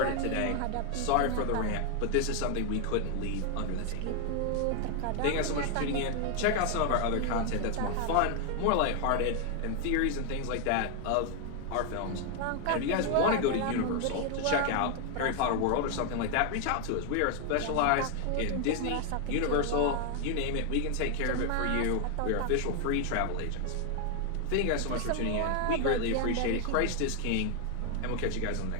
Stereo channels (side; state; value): both; different; correlation 0.01